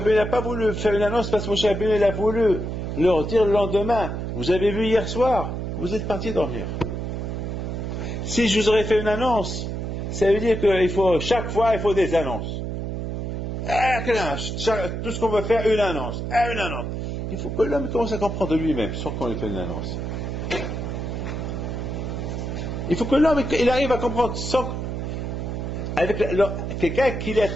n'a pas voulu faire une annonce parce que Moshe Rabbeinu il a voulu leur dire le lendemain, vous avez vu hier soir, vous êtes partis dormir. Si je vous aurais fait une annonce, ça veut dire qu'il faut, chaque fois, il faut des annonces. Tout ce qu'on veut faire, une annonce. Une annonce. Il faut que l'homme commence à comprendre lui-même, sans qu'on lui fait une annonce. Il faut que l'homme il arrive à comprendre, sans, avec quelqu'un qui est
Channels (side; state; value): right; noise; hum, 4 dB below the sound